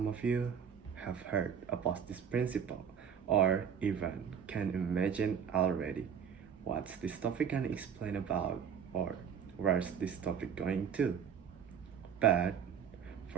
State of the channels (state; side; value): quieter; left; 7.6 dB